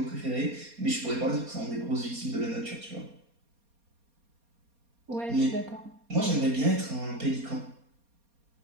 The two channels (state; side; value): late; left; 4.2 ms